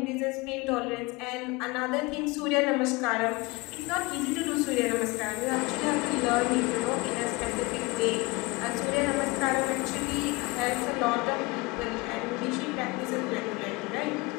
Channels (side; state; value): right; quieter; 24.6 dB